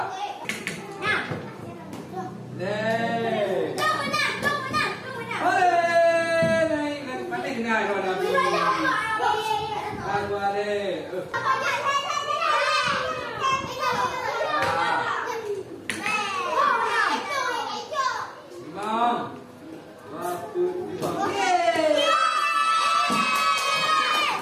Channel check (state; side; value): identical; both; correlation 1.00